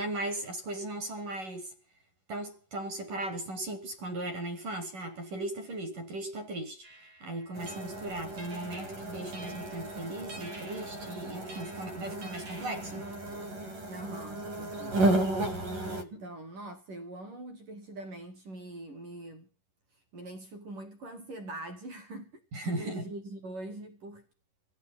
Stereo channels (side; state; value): left; late; 11 ms